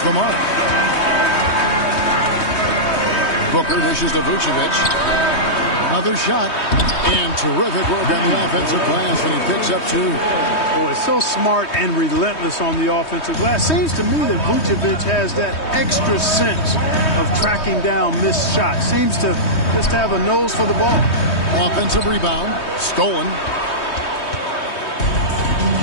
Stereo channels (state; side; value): late; right; 3.2 ms